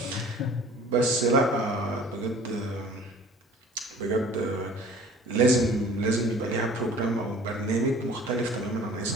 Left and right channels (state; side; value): normal; both; correlation 0.48